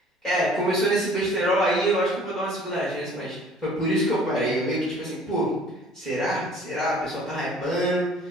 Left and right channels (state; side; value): normal; both; correlation 0.52